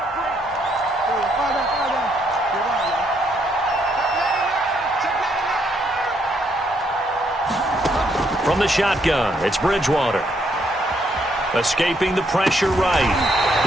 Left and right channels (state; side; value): normal; both; correlation 0.73